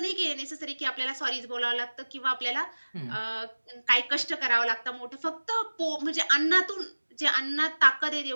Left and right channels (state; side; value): inverted; both; correlation -1.00